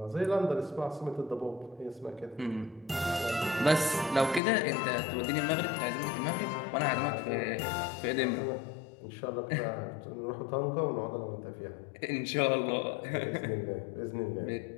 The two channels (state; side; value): drops out; right; at 4.4 s